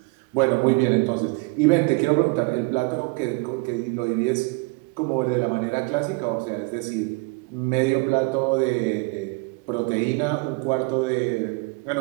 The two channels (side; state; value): left; quieter; 28.3 dB